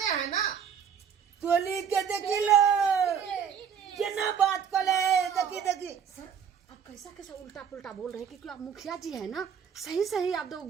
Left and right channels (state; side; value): quieter; left; 7.6 dB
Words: है ना। तोली के देखी लो केना बात करे, देखी सर, आप कैसा उल्टा पुल्टा बोल रहे हैं, क्योंकि आप मुखिया जी है ना। सही आप तो